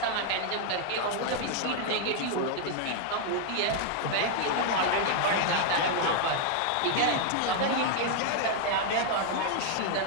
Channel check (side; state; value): both; different; correlation 0.00